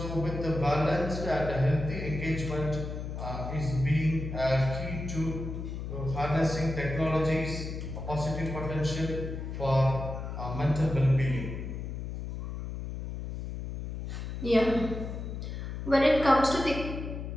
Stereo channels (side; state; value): left; noise; hum, 6 dB below the sound